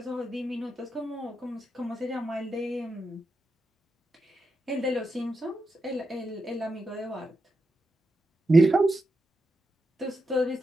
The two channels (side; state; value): both; normal; correlation 0.86